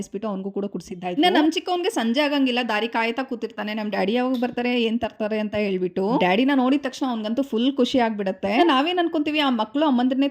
ಅವ್ನಿಗೂ ಕೂಡ ಕುಡಿಸಿದ್ದಾಯ್ತು. ಇನ್ನು ನಮ್ಮ ಚಿಕ್ಕವನ್ಗೆ ಸಂಜೆ ಆಗಂಗಿಲ್ಲ, ದಾರಿ ಕಾಯ್ತಾ ಕೂತಿರ್ತಾನೆ. ನಮ್ಮ ಡ್ಯಾಡಿ ಯಾವಾಗ ಬರ್ತಾರೆ, ಏನ್ ತರ್ತಾರೆ ಅಂತ ಹೇಳ್ಬಿಟ್ಟು. ಡ್ಯಾಡಿನ ನೋಡಿದ ತಕ್ಷಣ ಅವ್ನಿಗಂತೂ ಫುಲ್ ಖುಷಿ ಆಗ್ಬಿಡುತ್ತೆ. ನಾವೇನ್ ಅನ್ಕೊಂತೀವಿ, ಆ ಮಕ್ಕಳು ಅಮ್ಮಂದ್ರನ್ನೇ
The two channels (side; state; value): both; identical; correlation 1.00